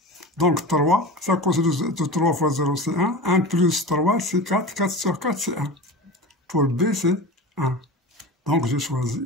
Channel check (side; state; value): both; normal; correlation 0.30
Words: Donc, 3, ça cos de 3 fois 0, c'est 1. 1 plus 3, c'est 4. 4 sur 4, c'est 1. Pour B, c'est 1. Donc, j'ai choisi.